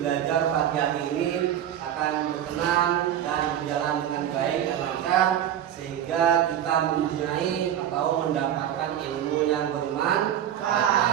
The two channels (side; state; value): left; quieter; 10.6 dB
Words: pagi hari ini akan berkenan dan berjalan dengan baik dan lancar, sehingga kita mempunyai atau mendapatkan ilmu yang